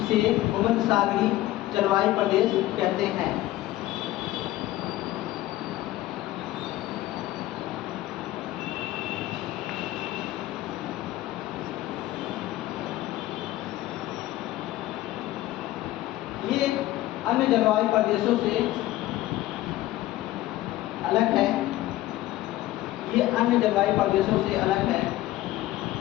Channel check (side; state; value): right; quieter; 15.9 dB